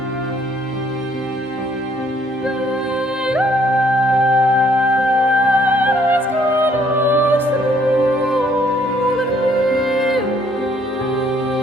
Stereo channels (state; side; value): normal; both; correlation 0.65